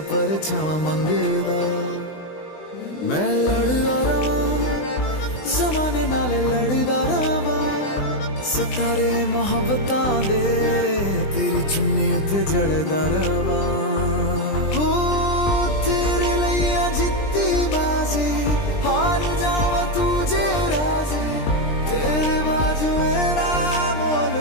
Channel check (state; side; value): late; right; 20 ms